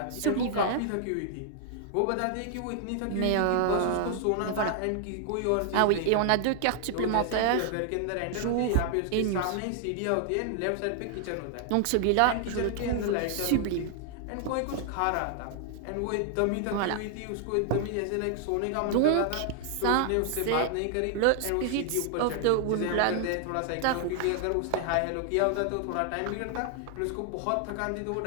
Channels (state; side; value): different; both; correlation 0.00